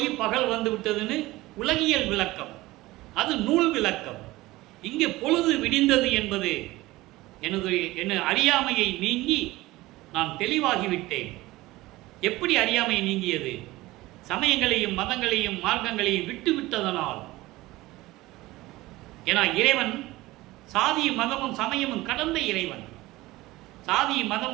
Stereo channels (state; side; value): quieter; left; 18.9 dB